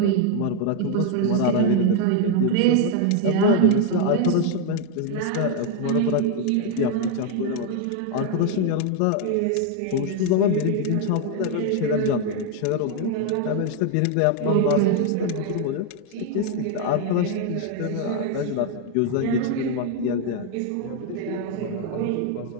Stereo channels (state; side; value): different; both; correlation 0.01